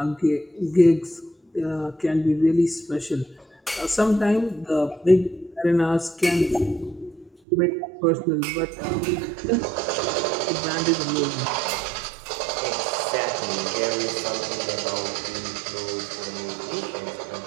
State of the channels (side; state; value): left; drops out; at 7.3 s